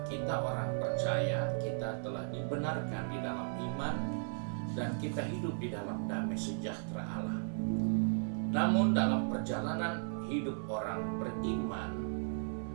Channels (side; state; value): left; silent; 54 dB below the other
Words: kita orang percaya, kita telah dibenarkan di dalam iman dan kita hidup di dalam damai sejahtera Allah. Namun dalam perjalanan hidup orang beriman,